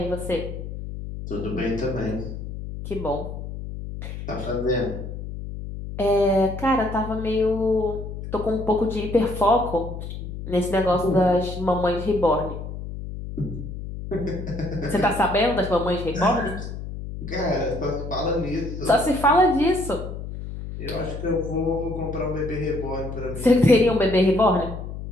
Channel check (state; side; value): noise; left; hum, 8 dB below the sound